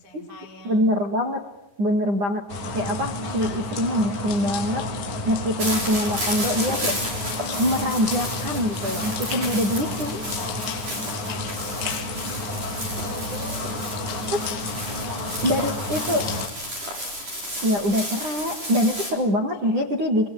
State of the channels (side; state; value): left; late; 10 ms